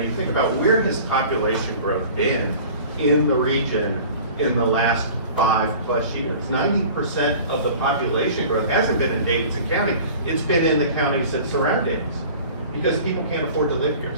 think about where has population growth been in the region in the last 5+ years. 90% of the population growth hasn't been in Davidson County, it's been in the counties that surround Davidson, because people can't afford to live here.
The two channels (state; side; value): inverted; both; correlation -0.43